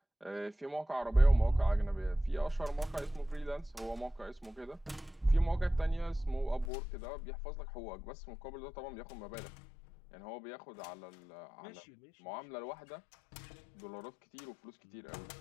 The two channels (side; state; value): right; drops out; at 6.7 s